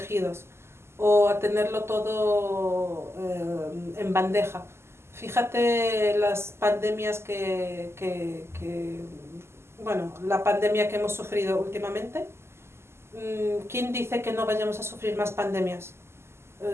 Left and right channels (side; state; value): left; late; 0.12 ms